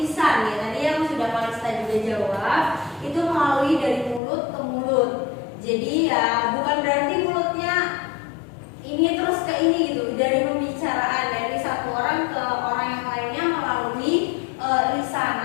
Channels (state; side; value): drops out; right; at 4.2 s